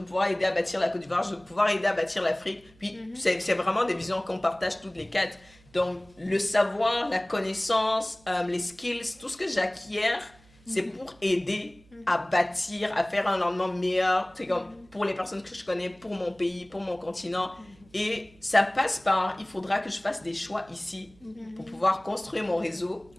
pouvoir aider à bâtir la Côte d'Ivoire, je veux pouvoir aider à bâtir l'Afrique. Puis c'est vraiment des visions qu'on partage toutes les quatre. Donc le savoir, la connaissance, les skills, tout ce que j'acquiers, c'est pour aider à bâtir, à faire un lendemain meilleur, c'est comme pour les personnes que je connais, pour mon pays, pour mon continent. Et ça passe par, il faudra que je fasse des choix ici pour pouvoir construire mon réseau,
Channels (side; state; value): right; noise; hum, 28 dB below the sound